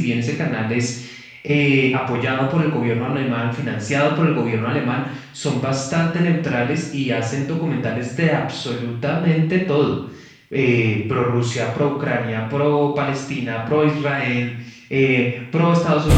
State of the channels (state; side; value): identical; both; correlation 1.00